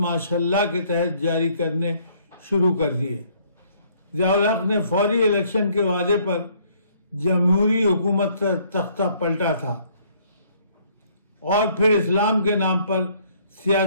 کے تحت جاری کرنے شروع کر دیے۔ ضیاء الحق نے فوری الیکشن کے وعدے پر جمہوری حکومت کا تختہ پلٹا تھا اور پھر اسلام کے نام پر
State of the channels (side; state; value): both; inverted; correlation -0.63